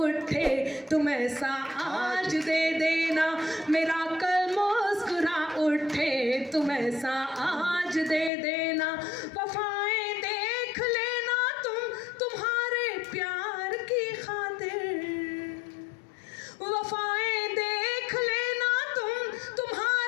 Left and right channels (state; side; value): drops out; right; at 8.3 s